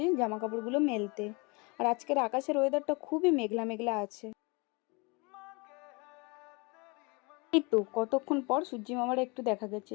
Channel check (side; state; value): right; quieter; 28.7 dB